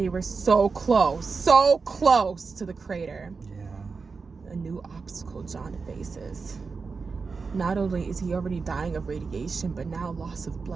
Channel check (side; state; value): left; quieter; 4.7 dB